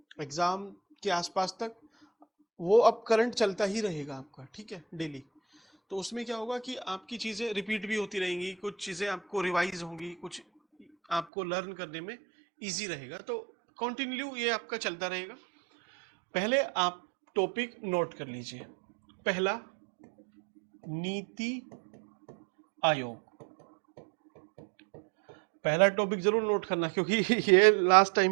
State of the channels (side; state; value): left; drops out; at 11.2 s